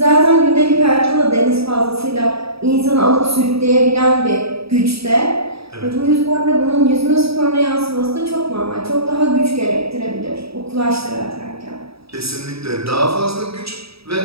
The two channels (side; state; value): left; late; 0.77 ms